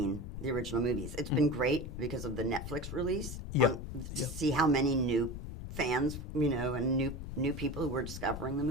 the original movies. It's been great because of the Netflix release to see how many new fans, you know, and new people who were discovering the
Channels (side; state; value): left; noise; rumble, 8 dB below the sound